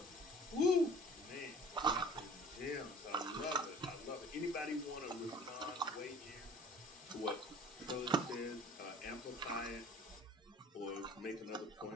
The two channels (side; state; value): both; normal; correlation 0.49